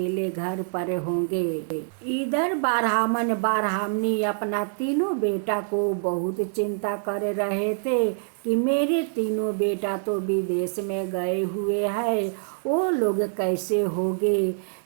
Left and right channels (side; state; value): left; silent; 61 dB below the other